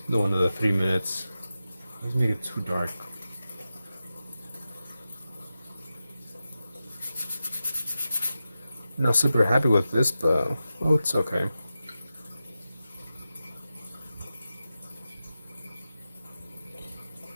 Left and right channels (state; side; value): inverted; both; correlation -0.92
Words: The one of the 3 minutes. Let's make it too dark. Not super happy with this, but oh, it's okay.